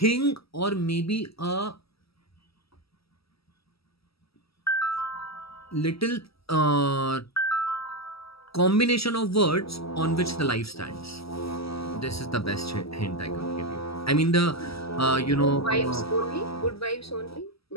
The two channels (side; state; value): right; late; 0.76 ms